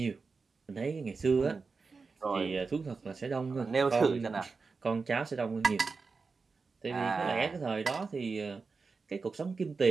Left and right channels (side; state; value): left; quieter; 4.5 dB